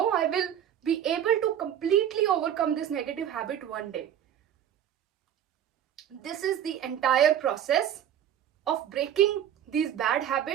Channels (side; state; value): left; quieter; 10.0 dB